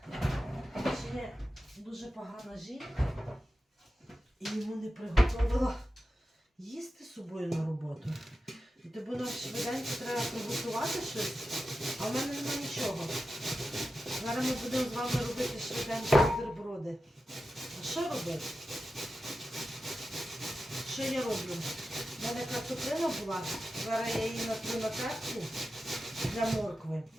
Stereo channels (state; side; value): normal; both; correlation 0.92